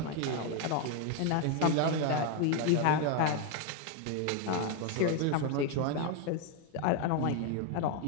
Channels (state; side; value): different; both; correlation 0.01